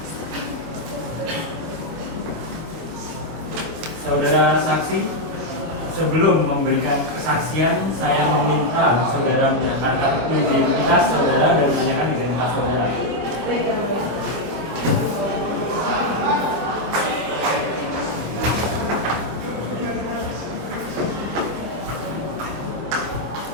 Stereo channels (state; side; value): late; left; 25 ms